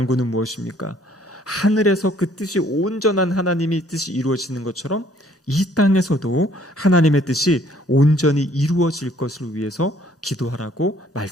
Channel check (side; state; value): both; normal; correlation 0.61